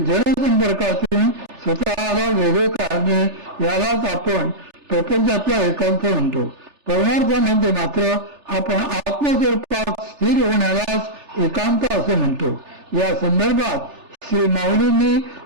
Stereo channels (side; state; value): left; late; 3.3 ms